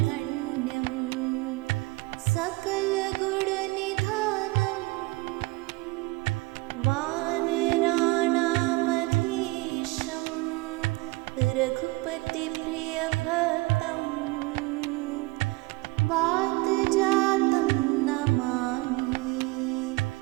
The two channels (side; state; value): left; quieter; 22.9 dB